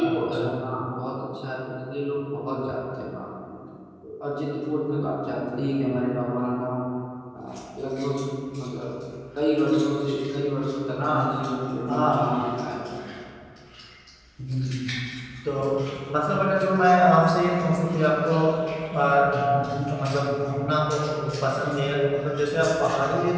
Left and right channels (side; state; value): both; identical; correlation 1.00